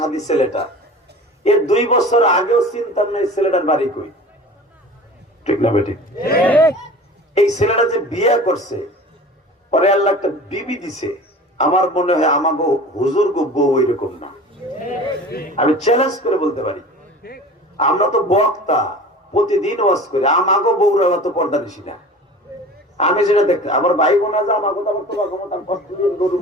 ছেলেটা এর 2 বছর আগেও চিন্তা নাই ছেলেটার বাড়ি কই, ঠিক না বেটি? এই ছেলেটা যে বিয়ে করছে পরে আল্লাহ একটা বিবি দিছে, আমার মনে হয় আমাকে হুজুর গো বউ এরকম না। আমি চ্যালেঞ্জ করে বলতে পারি, আমরা তো বক্তা প্রতিদিন ওয়াজ করি, আমাকে বউরা অত পর্দা নিছি না। আমি যেটা দেখতে আমার ভাই বোনা যা আমাকে তো আমার তোমার ক্ষমতা কষ্ট দিয়ে গরুর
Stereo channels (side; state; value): both; normal; correlation 0.39